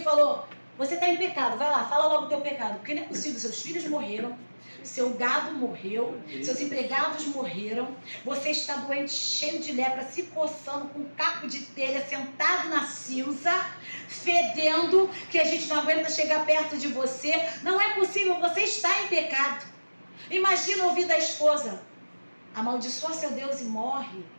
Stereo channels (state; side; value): inverted; both; correlation -1.00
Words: você está em pecado, vai lá, fala logo o teu pecado. Porque não é possível, seus filhos morreram, seu gado morreu, seus empregados morreram, você está doente, cheio de lepra, se coçando com um caco de telha, sentado na cinza, fedendo, que a gente não aguenta chegar perto de você. Não é possível, você está em pecado. Imagina ouvir da esposa, amaldiçoa seu Deus e morre.